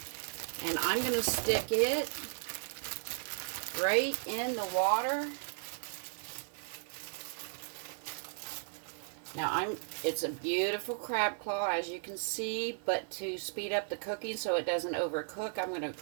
And I'm going to stick it right in the water. Now, it's a beautiful crab claw, as you can see, but to speed up the cooking so it doesn't overcook, I'm going to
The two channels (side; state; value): left; silent; 54 dB below the other